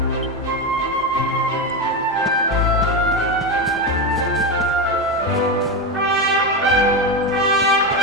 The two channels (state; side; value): normal; both; correlation 0.14